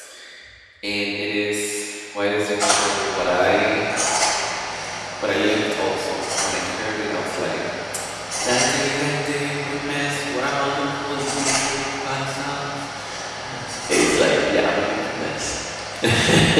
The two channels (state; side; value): identical; both; correlation 1.00